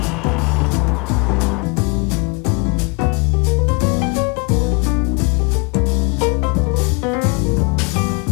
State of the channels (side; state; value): right; quieter; 31.9 dB